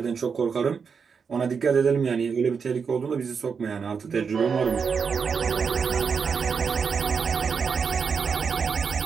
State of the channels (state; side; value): quieter; left; 5.9 dB